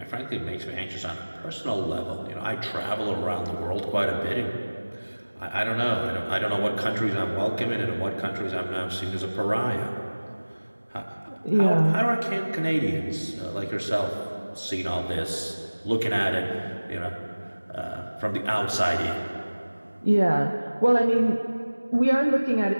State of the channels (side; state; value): both; inverted; correlation -1.00